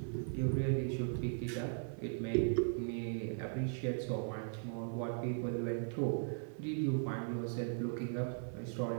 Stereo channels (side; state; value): left; silent; 52 dB below the other